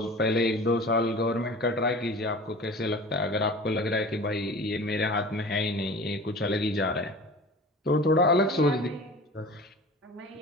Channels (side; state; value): both; normal; correlation 0.39